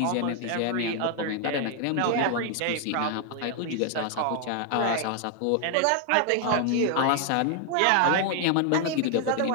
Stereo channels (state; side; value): different; both; correlation 0.00